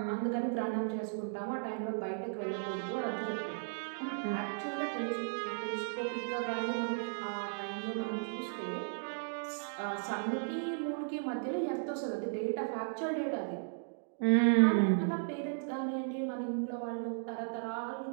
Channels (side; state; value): left; silent; digital silence